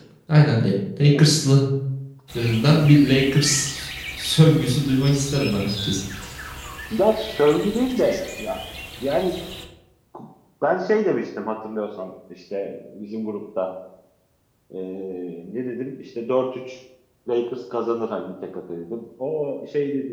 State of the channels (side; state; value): both; identical; correlation 1.00